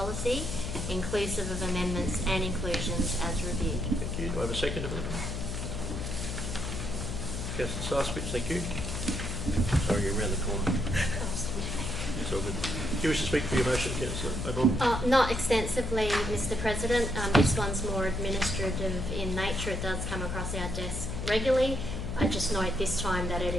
inclusive of amendments and inclusions as reviewed. Thank you. Do I have a seconder for that? Councillor Sarswitch, thank you. Sorry, you're around the corner. It's all good. Do you wish to speak for your motion, Councillor Oborne? Not extensively, Mr. President. This one's more administrative in nature. It does come across our desk regularly. I just note this time that it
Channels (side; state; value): left; noise; hum, 4 dB below the sound